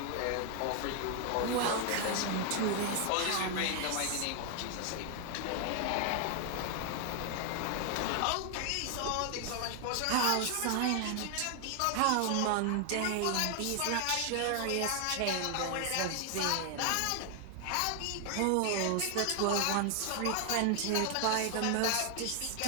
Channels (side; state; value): both; different; correlation 0.00